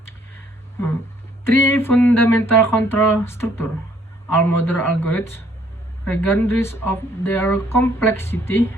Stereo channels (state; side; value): normal; both; correlation 0.64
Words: Three fundamental control structure. All modern algorithms, regardless of their complexity,